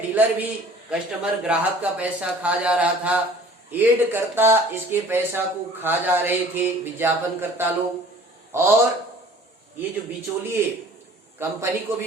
डीलर भी कस्टमर ग्राहक का पैसा खा जा रहा था, एड करता इसके पैसा को खा जा रहे थे विज्ञापन करता लोग, और ये जो बिचौलिए, कंपनी को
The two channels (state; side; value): normal; both; correlation 0.49